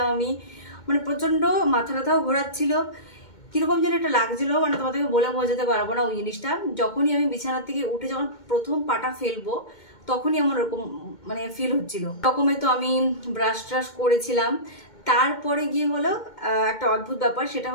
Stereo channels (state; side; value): late; right; 2.2 ms